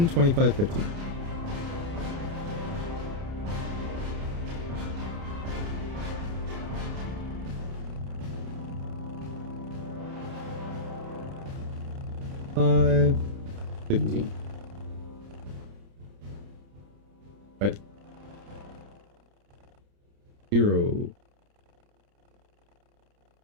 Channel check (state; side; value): late; left; 30 ms